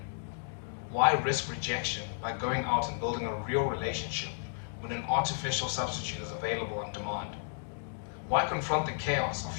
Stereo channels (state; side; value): silent; right; digital silence